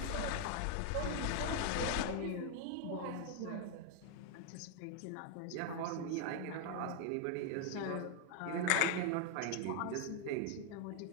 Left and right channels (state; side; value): different; both; correlation 0.00